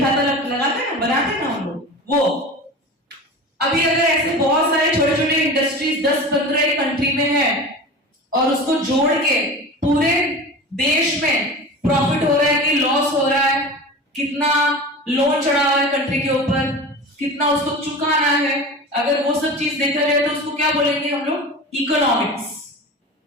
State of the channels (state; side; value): normal; both; correlation 0.32